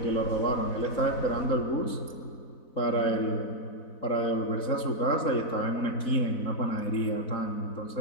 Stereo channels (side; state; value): right; late; 4.0 ms